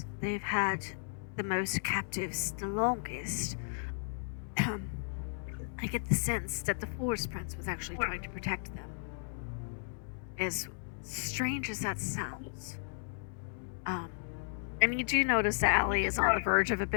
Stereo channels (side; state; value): right; silent; digital silence